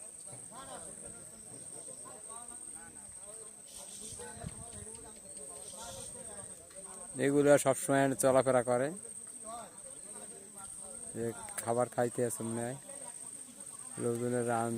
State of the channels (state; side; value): identical; both; correlation 1.00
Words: এগুলো সবসময় চলাফেরা করে, খাবার খাইতে আছে মনে হয়, লোকজনের